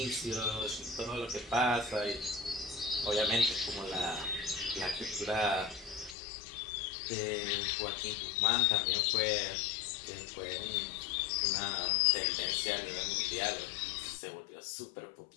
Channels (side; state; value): right; drops out; at 6.2 s